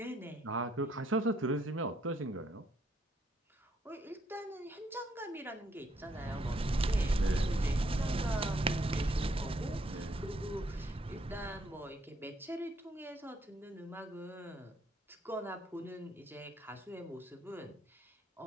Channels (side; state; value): both; normal; correlation 0.71